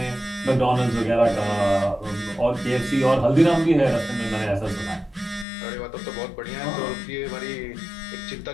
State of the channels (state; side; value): drops out; right; at 5.5 s